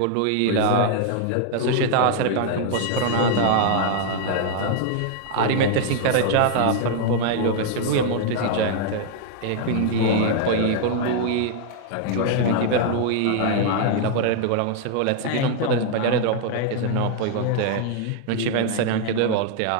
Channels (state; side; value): different; both; correlation 0.00